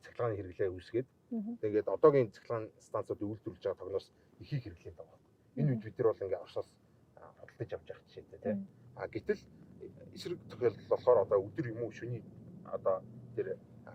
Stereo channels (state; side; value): identical; both; correlation 1.00